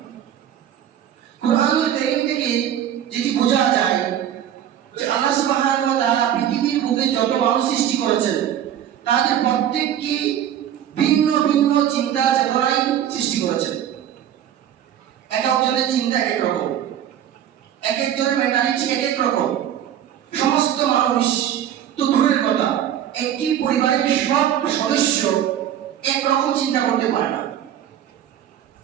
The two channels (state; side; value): quieter; left; 10.5 dB